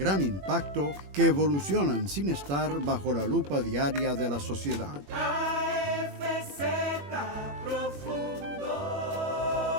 impacto que evolucionan sin estar bajo la lupa diaria de la sociedad. AFZ Profundo.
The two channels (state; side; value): late; left; 21 ms